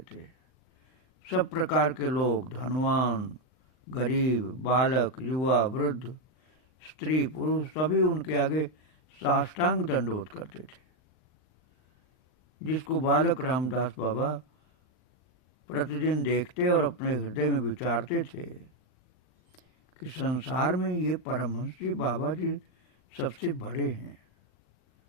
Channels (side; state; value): right; late; 39 ms